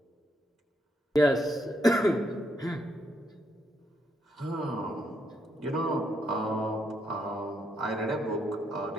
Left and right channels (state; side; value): normal; both; correlation 0.76